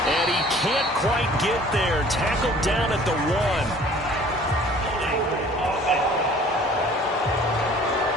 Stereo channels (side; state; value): both; normal; correlation 0.51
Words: And he can't quite get there. Tackled down at the 1.